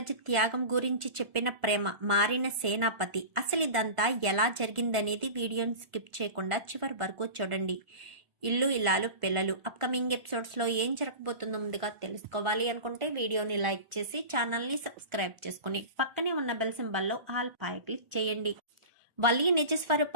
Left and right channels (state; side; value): late; left; 1.4 ms